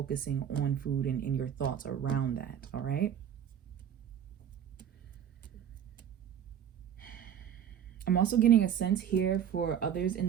on food and in your thoughts around that, all right? I'm also getting a sense here for others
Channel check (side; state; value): left; quieter; 9.1 dB